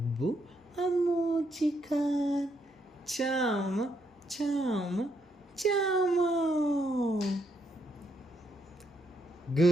ಅಮ್ಮೂಚಿ ಖಾನ್ ಚಾಮ ಚಾಮ ಚಾಮ.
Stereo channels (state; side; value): normal; both; correlation 0.76